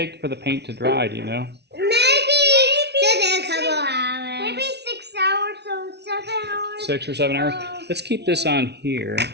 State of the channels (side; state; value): left; late; 0.49 ms